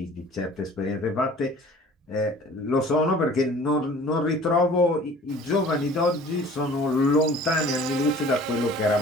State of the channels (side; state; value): both; normal; correlation 0.48